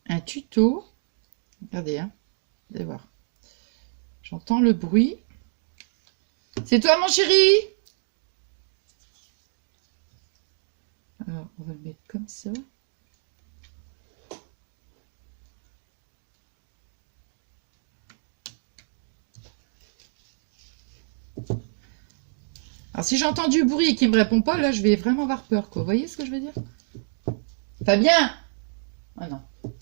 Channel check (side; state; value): left; silent; digital silence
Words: un tuto. Regardez, hein. Vous allez voir. J'entends le bruit. C'est toi, mon chéri? Alors, on va le mettre comme ça. Alors, si j'entends du bruit et qu'il me répond pas, là, je vais vraiment avoir peur, quoi. Vous voyez ce que je veux dire? Fabien! Ah non.